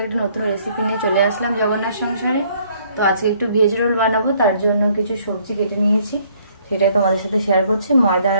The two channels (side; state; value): both; inverted; correlation -0.63